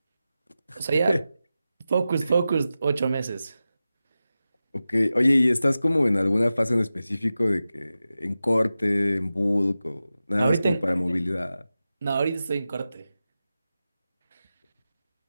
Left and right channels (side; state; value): both; inverted; correlation -0.94